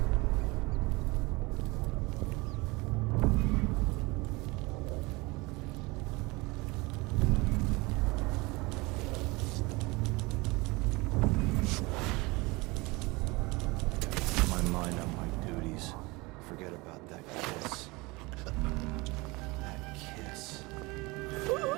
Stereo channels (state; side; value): quieter; left; 24.3 dB